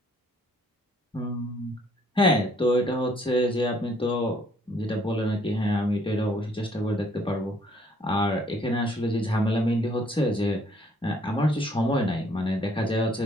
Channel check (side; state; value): both; normal; correlation 0.63